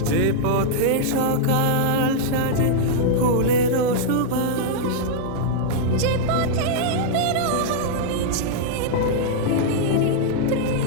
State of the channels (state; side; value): different; both; correlation -0.01